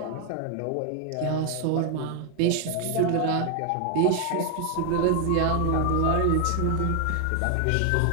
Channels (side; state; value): both; different; correlation 0.00